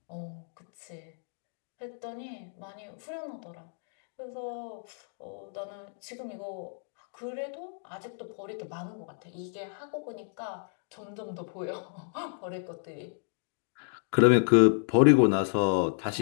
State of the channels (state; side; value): silent; right; digital silence